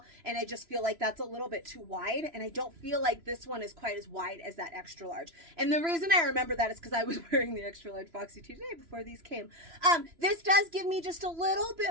And I just feel like that's a little bit too wide. And I don't feel like this one is quite as wide as that extra large. And the reason I remember that is because I was wearing the extra large boxy tee today before these came. This does give me just a little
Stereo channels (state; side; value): late; left; 3.0 ms